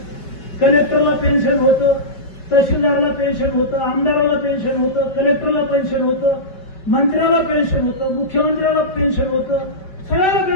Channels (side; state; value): right; late; 5.2 ms